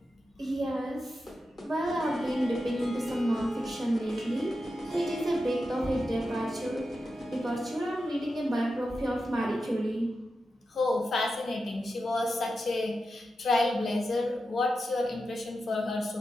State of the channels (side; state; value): both; normal; correlation 0.90